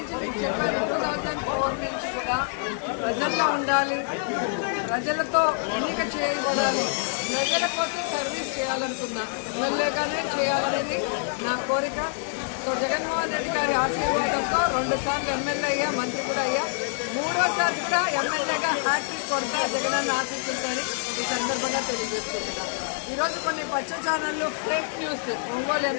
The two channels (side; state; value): right; silent; digital silence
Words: ప్రజల్లో ఉండాలి, ప్రజలతో ఎన్నిక చేయబడాలి, ప్రజల కోసం సర్వీస్ చేయాలనుకున్నా, ఎమ్మెల్యేగానే చేయాలనేది నా కోరిక. సో జగన్మోహన్ రెడ్డి గారి ఆశీర్వాదంతో 2 సార్లు ఎమ్మెల్యే అయ్యా, మంత్రి కూడా అయ్యా, 3వసారి కూడా ఎమ్మెల్యేగా హ్యాట్రిక్ కొడతా జగనన్న ఆశిస్తుందని ఈ సందర్భంగా తెలియజేస్తున్నాను. ఈరోజు కొన్ని పచ్చ ఛానళ్ళు ఫేక్ న్యూస్ ఒంగోలు